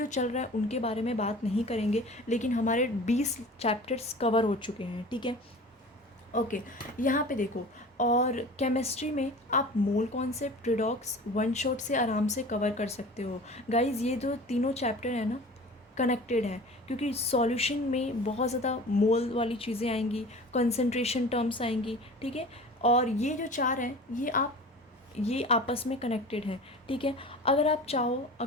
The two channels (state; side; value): normal; both; correlation 0.39